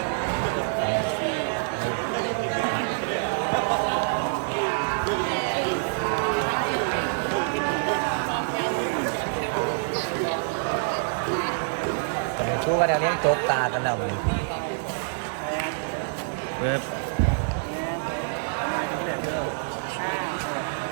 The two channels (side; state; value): left; silent; digital silence